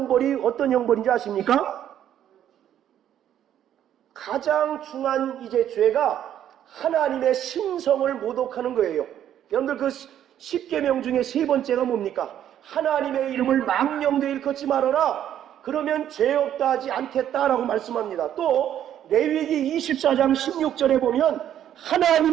어떤 형벌인지 아십니까? 가장 중한 이제 죄가 하나님의 신성을 모독하는 거예요. 여러분들, 그 10계명 중에 세 번째가 뭡니까? 하나님의 이름을 망령되이 일컫지 말아라. 그러면 죄 없다 하지 않겠다라고 말씀합니다. 또 레위기 24장 16절에 보면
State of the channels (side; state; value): left; quieter; 10.6 dB